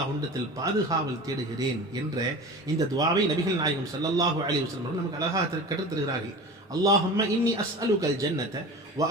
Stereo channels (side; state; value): both; normal; correlation 0.35